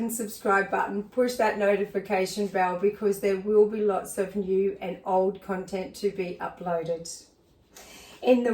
subscribe button, push that notification bell, because there will be lots of new and old content to be uploaded in the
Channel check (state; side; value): identical; both; correlation 1.00